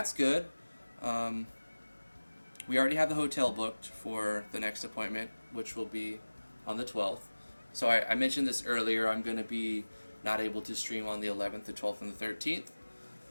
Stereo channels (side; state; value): both; inverted; correlation -1.00